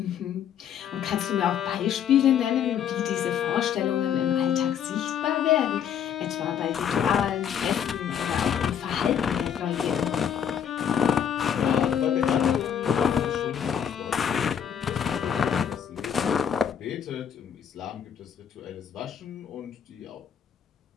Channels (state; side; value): quieter; right; 8.5 dB